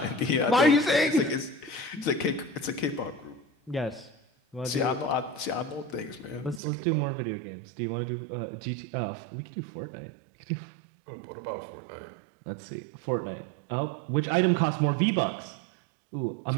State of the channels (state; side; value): drops out; left; at 6.6 s